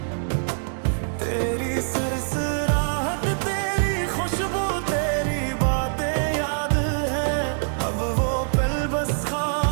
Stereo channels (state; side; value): silent; left; digital silence